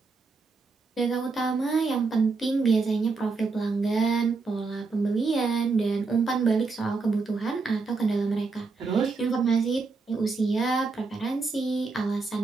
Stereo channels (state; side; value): quieter; left; 4.2 dB